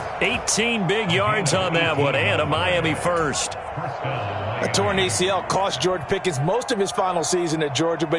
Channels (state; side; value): identical; both; correlation 1.00